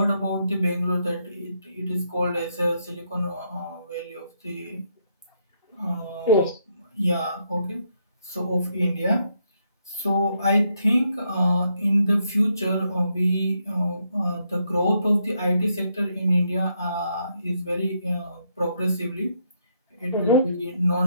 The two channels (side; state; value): both; inverted; correlation -0.76